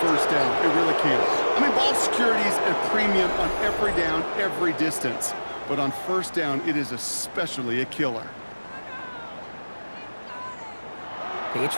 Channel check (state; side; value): inverted; both; correlation -1.00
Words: 1st down. It really can't. I mean, ball security is a premium on every down, every distance. But on 1st down, it is especially a killer.